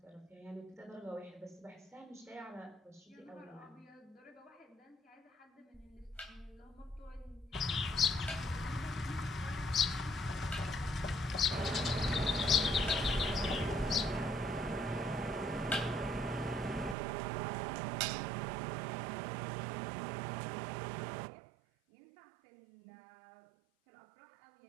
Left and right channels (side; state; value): left; drops out; at 16.9 s